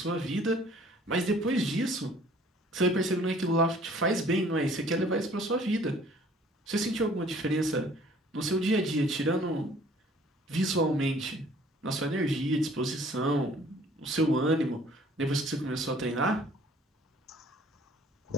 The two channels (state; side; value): normal; both; correlation 0.55